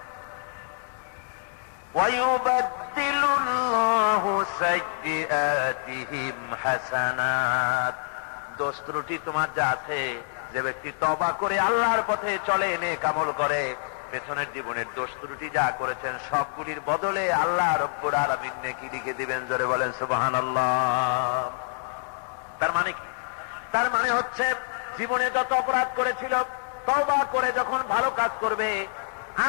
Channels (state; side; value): silent; right; digital silence